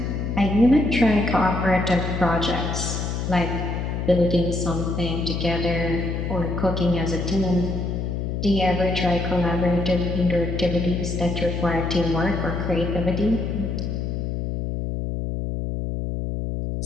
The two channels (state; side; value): noise; left; hum, 2 dB below the sound